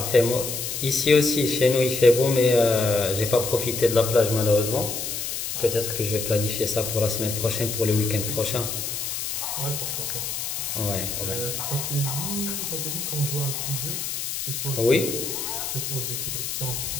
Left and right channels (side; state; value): left; noise; hiss, 4 dB below the sound